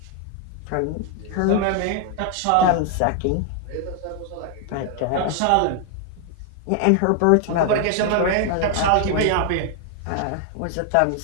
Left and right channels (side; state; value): both; different; correlation 0.00